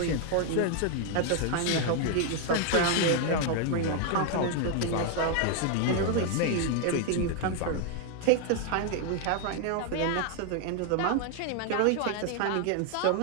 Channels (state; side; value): different; both; correlation 0.00